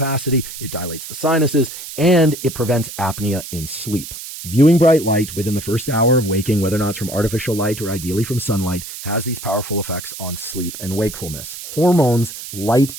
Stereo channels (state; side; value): noise; right; hiss, 11 dB below the sound